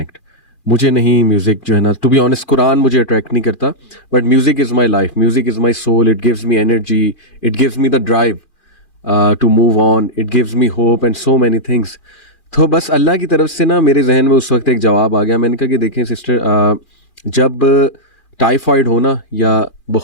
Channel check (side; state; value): right; late; 2.4 ms